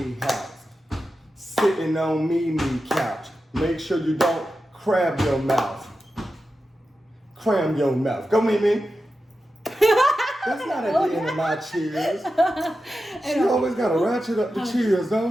house, sitting on Mimi couch. Make sure you don't crab your mouth. Cram your mouth. Go Mimi. That's not at the end of my cheers. She always gotta ratchet up the cheers,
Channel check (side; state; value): both; normal; correlation 0.91